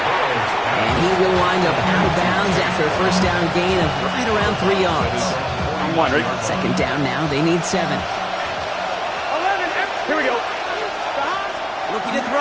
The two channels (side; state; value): both; identical; correlation 1.00